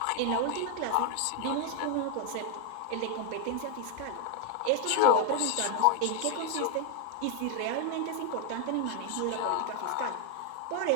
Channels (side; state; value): both; different; correlation 0.00